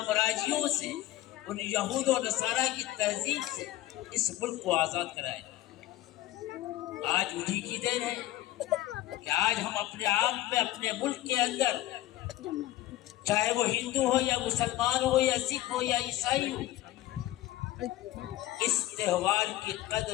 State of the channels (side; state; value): right; quieter; 15.4 dB